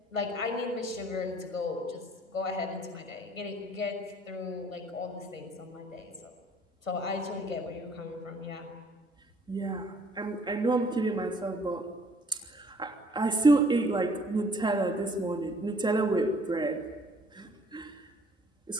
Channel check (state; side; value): normal; both; correlation 0.58